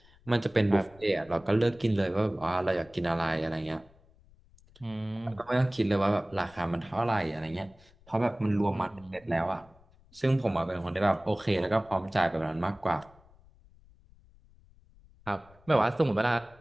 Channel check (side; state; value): left; noise; rumble, 27 dB below the sound